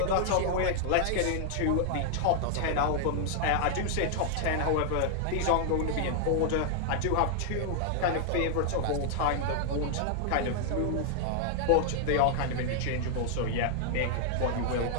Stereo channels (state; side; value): different; both; correlation 0.00